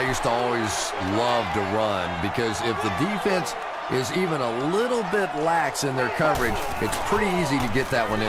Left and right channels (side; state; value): both; identical; correlation 1.00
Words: used to always love to run, because if the defense is even a little bit lax in their coverage, it's pretty easy to get that one